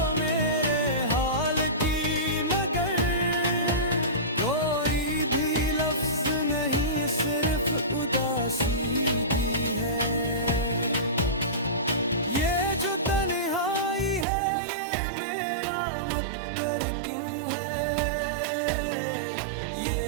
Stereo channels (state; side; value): drops out; left; at 14.2 s